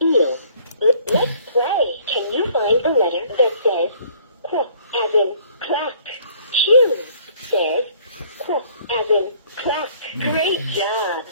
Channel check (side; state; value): both; inverted; correlation -0.57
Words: eel? Let's play. Can you find the letter that says qu, as in crack? Q says qu, as in crack. Great job.